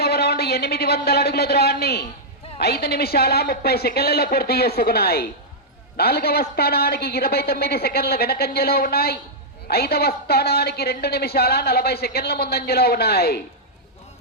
రౌండ్ 800 అడుగుల దూరాన్ని 5 నిమిషాల 30 సెకండ్లలో పూర్తి చేసుకున్నాయి. నాలుగవ స్థానానికి 29 సెకండ్ల వెనకంజలో ఉన్నాయి. 5వ స్థానానికి 2 నిమిషాల 40 సెకండ్ల ముందంజలో ఉన్నాయి.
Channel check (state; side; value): normal; both; correlation -0.08